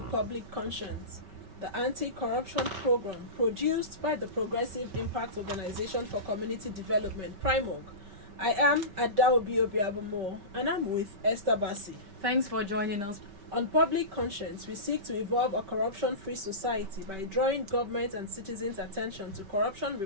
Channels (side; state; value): left; late; 5.2 ms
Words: Public Conscience, the anti-corruption program produced by the Progressive Impact Organization for Community Development, PRIMOG. I am Adaobi Obiabomo and I'm with Esther Bassi. Thanks for joining us. On Public Conscience, we seek to evolve a corruption-free society by drawing government and citizens' attention to corruption